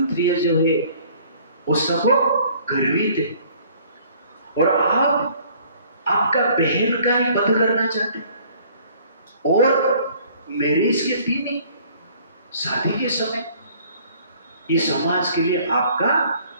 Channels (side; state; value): both; inverted; correlation -0.56